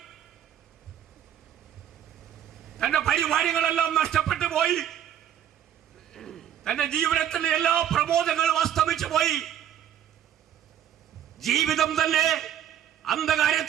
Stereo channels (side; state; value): left; quieter; 10.3 dB